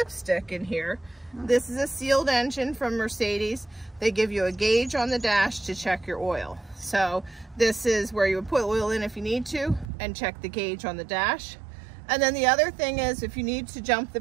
in here. This is a sealed engine from Mercedes. They give you a gauge on the dash to check your oil. So this is where you would put oil in if you need to and check the gauge on the dash. And then the other thing is if you need to jump the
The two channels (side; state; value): left; drops out; at 9.9 s